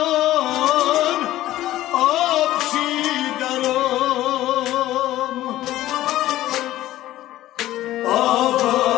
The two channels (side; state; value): right; quieter; 14.8 dB